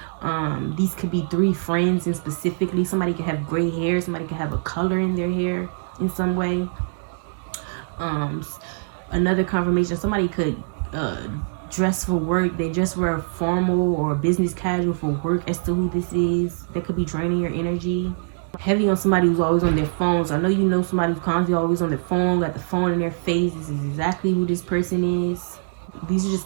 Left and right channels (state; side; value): silent; left; digital silence